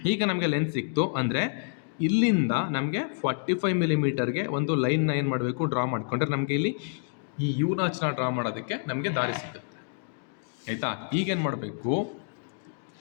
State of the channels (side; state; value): right; silent; digital silence